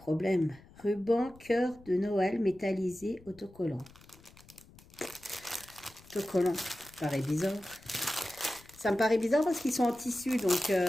Ruban cœur de Noël métallisé autocollant. Autocollant, ça paraît bizarre. Ça me paraît bizarre parce qu'ils sont en tissu, donc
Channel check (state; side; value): noise; left; rumble, 24 dB below the sound